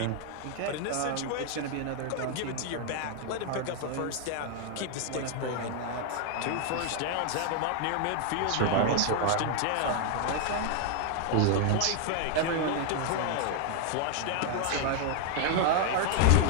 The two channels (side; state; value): both; different; correlation 0.00